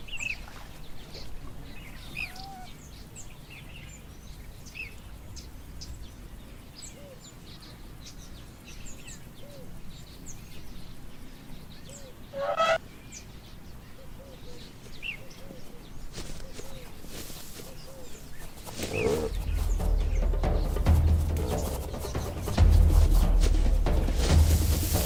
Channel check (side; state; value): both; identical; correlation 1.00